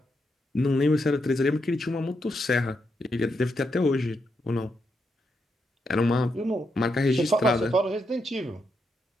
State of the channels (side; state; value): both; normal; correlation 0.82